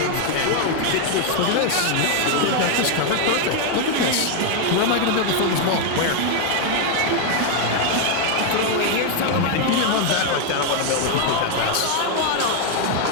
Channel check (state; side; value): different; both; correlation 0.01